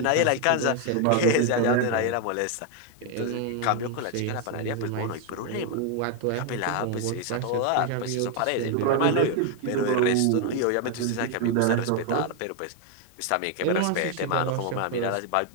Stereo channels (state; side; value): different; both; correlation 0.01